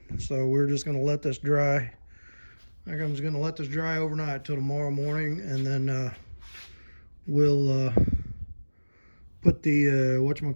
So we're just going to let this dry. I think I'm just going to let this dry overnight till tomorrow morning, and then we'll put the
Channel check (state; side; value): inverted; both; correlation -1.00